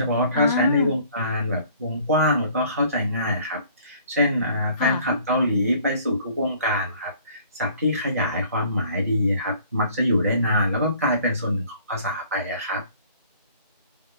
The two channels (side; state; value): both; inverted; correlation -0.55